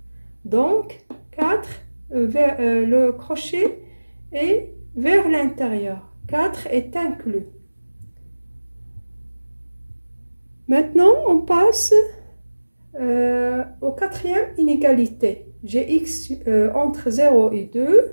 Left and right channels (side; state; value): both; inverted; correlation -1.00